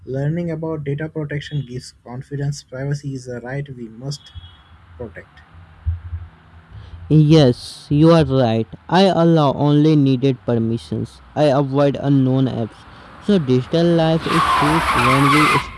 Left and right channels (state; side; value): identical; both; correlation 1.00